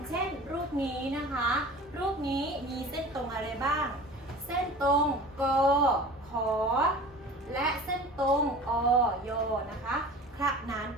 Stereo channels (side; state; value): both; normal; correlation 0.40